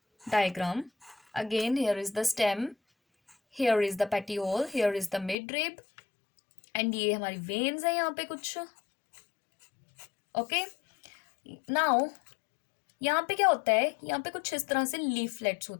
diagram. Again here is the stem, here is the petiole, here is the midrib and ये हमारी वेन्स है यहाँ पे कुछ. ओके. नाउ यहाँ पे क्या होता है, यहाँ पे कुछ इस तरह से लीफलेट्स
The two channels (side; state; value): right; drops out; at 5.4 s